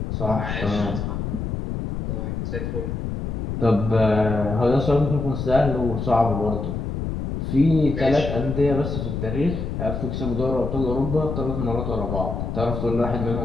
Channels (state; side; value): noise; left; rumble, 3 dB below the sound